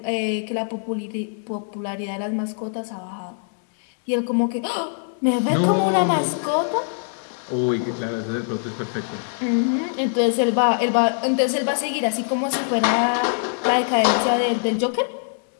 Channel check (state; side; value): silent; right; digital silence